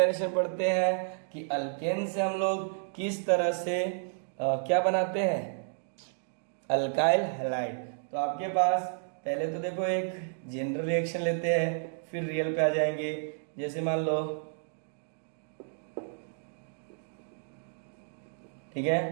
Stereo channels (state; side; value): silent; left; digital silence